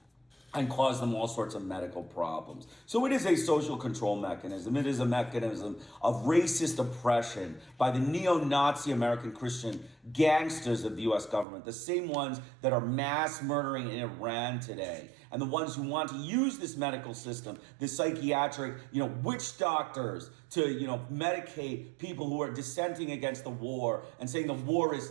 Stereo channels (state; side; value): drops out; left; at 11.5 s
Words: and cause them all sorts of medical problems. So it is a social control mechanism. It is a mechanism of racist oppression by the neo-Nazi American Christian gangsters of the U.S. government, the same ones that are mass murdering in Iran today, and the ones who want to use this medical system, this psychiatric, witch doctors, to, medicate people who are dissenting against the war and saying the war is